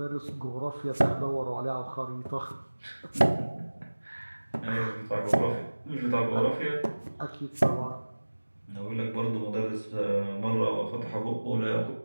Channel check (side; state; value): both; inverted; correlation -1.00